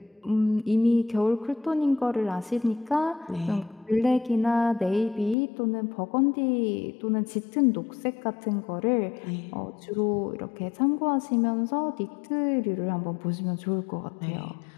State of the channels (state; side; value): drops out; right; at 5.4 s